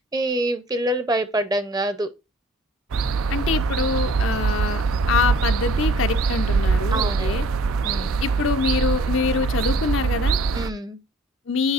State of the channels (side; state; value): both; normal; correlation 0.54